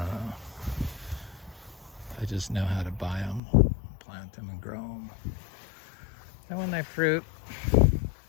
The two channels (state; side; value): drops out; right; at 3.4 s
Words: just know how to buy them, plant them, and grow them. And when they fruit,